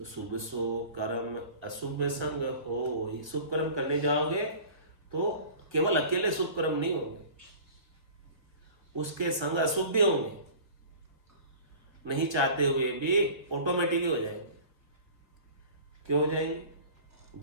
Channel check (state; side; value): late; left; 1.3 ms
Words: शुभ सो कर्म अशुभ संग हो। शुभ कर्म करने जाओगे तो केवल अकेले शुभ कर्म नहीं होंगे, उसके संग अशुभ भी होंगे, नहीं चाहते हुए भी ऑटोमेटिक हो जाएंगे। क्यों हो जाएंगे?